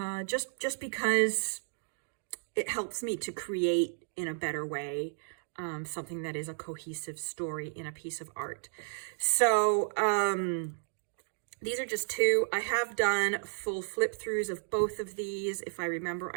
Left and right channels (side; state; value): left; silent; digital silence